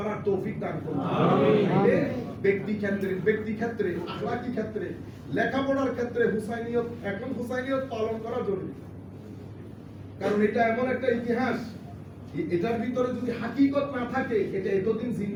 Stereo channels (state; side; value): identical; both; correlation 1.00